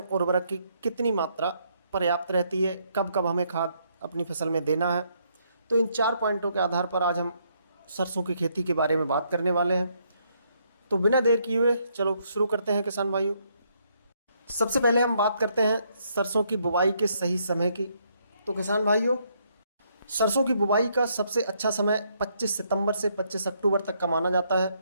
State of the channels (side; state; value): both; inverted; correlation -0.72